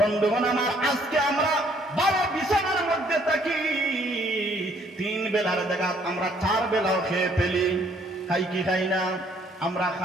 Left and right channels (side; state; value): both; normal; correlation 0.64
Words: আমার, আজকে আমরা 12 বিছানার মধ্যে থাকি, 3 বেলার জায়গা আমরা 4 বেলাও খেয়ে ফেলি। খাই কি খাই না? আমরা